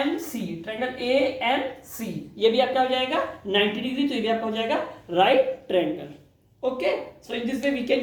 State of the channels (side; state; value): both; identical; correlation 1.00